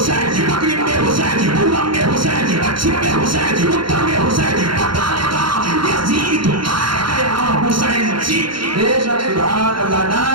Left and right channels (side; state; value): left; late; 0.73 ms